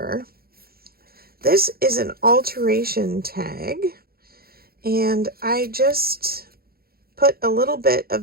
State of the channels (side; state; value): left; late; 0.44 ms